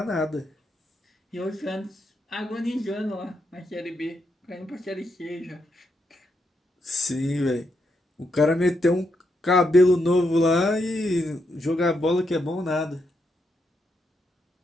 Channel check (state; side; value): normal; both; correlation 0.81